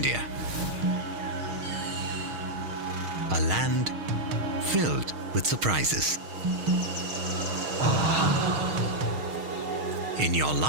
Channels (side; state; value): left; late; 6.4 ms